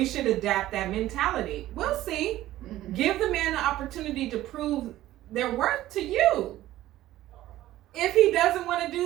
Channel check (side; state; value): left; quieter; 14.8 dB